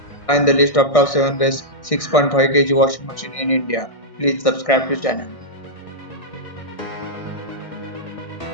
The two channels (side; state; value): right; late; 1.6 ms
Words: Find the list of top 7 best 6.5 kg washing machine in India. Please subscribe to channel.